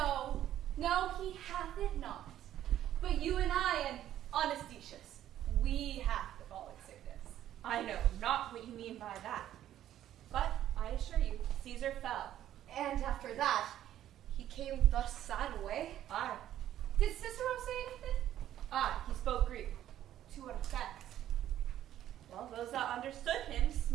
he hath it not. But you and I and honest Decius, we have the falling sickness. I know not what you mean by that. But, I assure you, Caesar fell. And after that, he came thus sad away. Aye. Did Cicero say anything? Aye, he spoke Greek. To what effect? Well, those that understood him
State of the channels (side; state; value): left; quieter; 12.0 dB